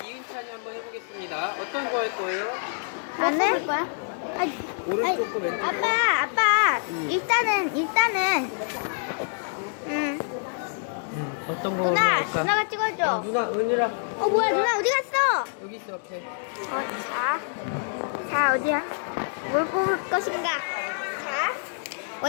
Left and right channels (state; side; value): silent; right; digital silence